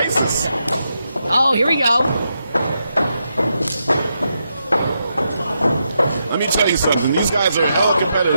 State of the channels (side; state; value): both; inverted; correlation -0.84